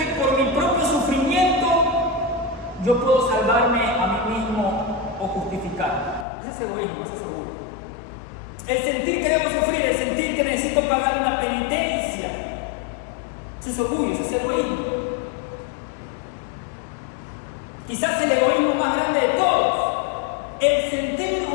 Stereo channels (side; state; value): right; drops out; at 6.2 s